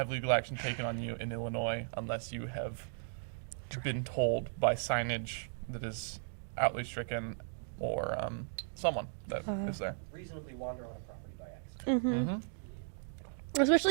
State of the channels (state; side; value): silent; left; digital silence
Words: legal action taken on you in Illinois unless you have been told by signage that is outly stricken or someone that is there. Reasonably wander on a property by accident.